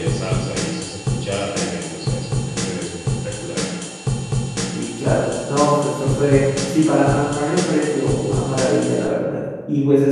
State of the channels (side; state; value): both; identical; correlation 1.00